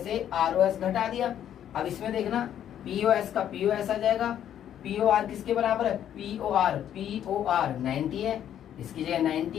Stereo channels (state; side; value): quieter; right; 10.3 dB